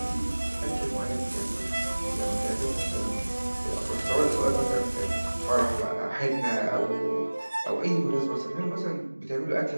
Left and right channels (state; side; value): inverted; both; correlation -1.00